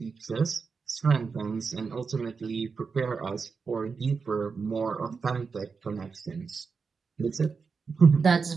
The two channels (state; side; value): quieter; left; 5.2 dB